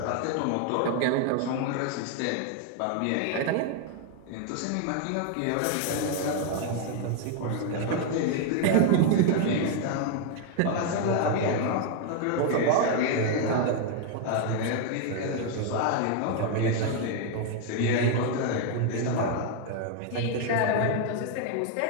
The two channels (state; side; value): different; both; correlation 0.00